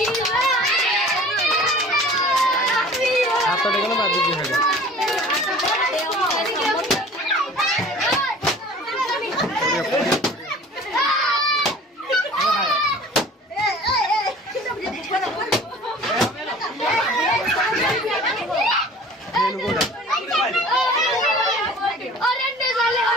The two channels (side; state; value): both; normal; correlation 0.45